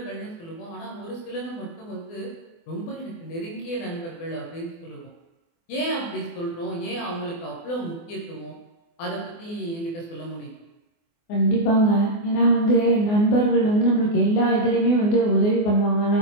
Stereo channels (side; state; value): right; late; 24 ms